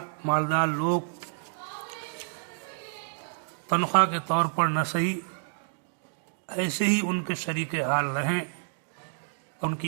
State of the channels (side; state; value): left; silent; digital silence